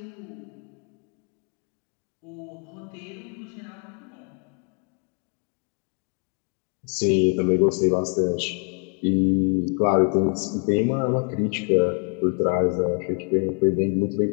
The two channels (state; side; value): quieter; right; 39.8 dB